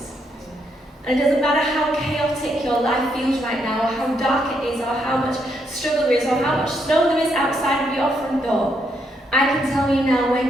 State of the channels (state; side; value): normal; both; correlation 0.76